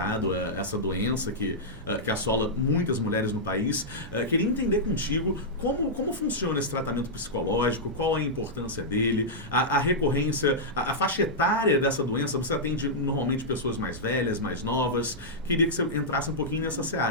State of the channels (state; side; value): normal; both; correlation -0.09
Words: essa doença que assola muitas mulheres no país. Queria entender contigo como funciona esse tratamento psicológico, qual a importância dele, a recorrência, a faixa etária dessa doença. Você atende normalmente pessoas mais velhas, mais novas. Queria que você entrasse um pouquinho nessa